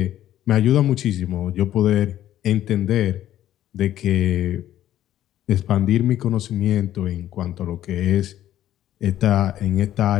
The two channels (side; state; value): right; quieter; 12.4 dB